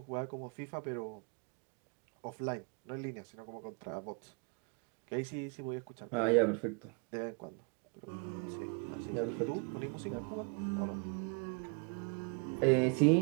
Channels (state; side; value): quieter; left; 36.2 dB